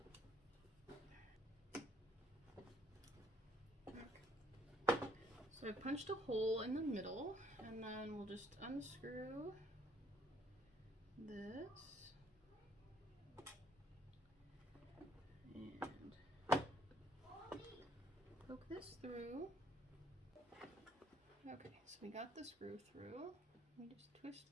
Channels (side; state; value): both; normal; correlation 0.64